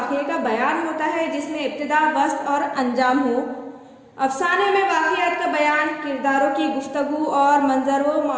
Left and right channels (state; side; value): identical; both; correlation 1.00